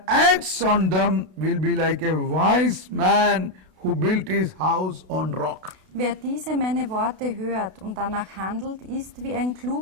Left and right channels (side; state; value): left; late; 32 ms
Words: acts on them will be like a wise man who built his house on rock. Wer diese meine Worte hört und danach handelt, ist wie ein